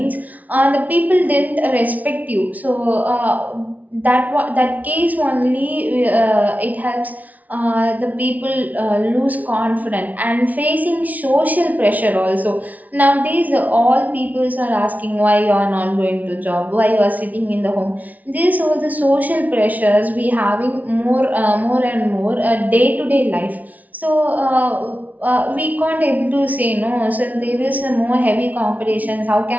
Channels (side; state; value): left; late; 0.074 ms